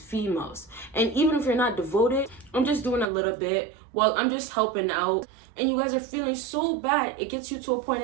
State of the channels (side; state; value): left; drops out; at 3.1 s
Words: females. And even if you're not devoted, I'm just doing a little bit. Well, I'm just helping out. And you guys are feeling so bad. It gets you to a point